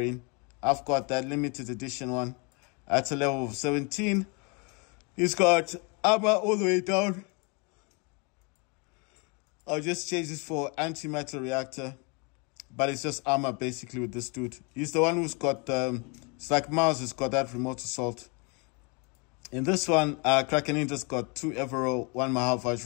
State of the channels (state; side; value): quieter; right; 32.3 dB